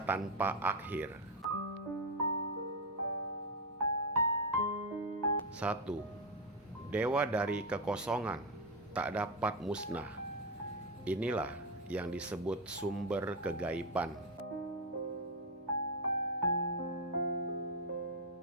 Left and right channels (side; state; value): both; normal; correlation 0.08